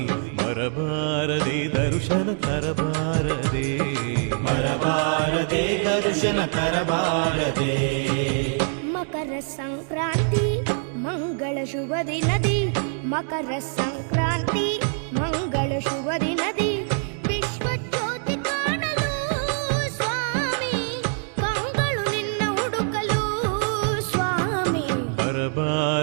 ಬರಬಾರದೆ ದರ್ಶನ ತರಬಾರದೆ ಬರಬಾರದೆ ದರ್ಶನ ತರಬಾರದೆ ಮಕರ ಸಂಕ್ರಾಂತಿ ಮಂಗಳ ಶುಭ ದಿನದಿ ಮಕರ ಸಂಕ್ರಾಂತಿ ಮಂಗಳ ಶುಭ ದಿನದಿ ವಿಶ್ವ ಜ್ಯೋತಿ ಕಾಣಲು ಸ್ವಾಮಿ ಕಂಗಳು ನಿನ್ನ ಹುಡುಕಲು ಸ್ವಾಮಿ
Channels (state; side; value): silent; left; 58 dB below the other